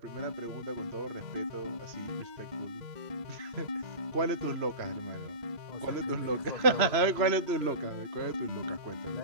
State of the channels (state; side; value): late; left; 3.0 ms